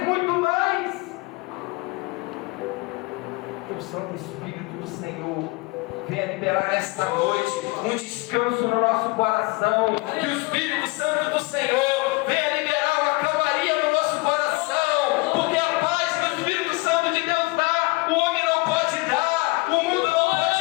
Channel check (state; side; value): quieter; right; 25.6 dB